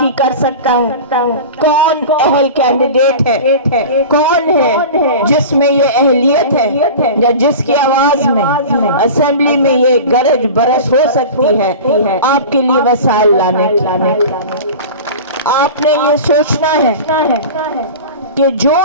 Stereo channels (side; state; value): both; inverted; correlation -0.33